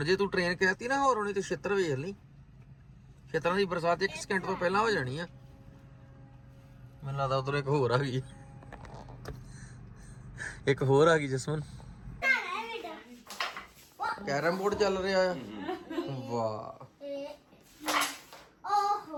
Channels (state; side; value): identical; both; correlation 1.00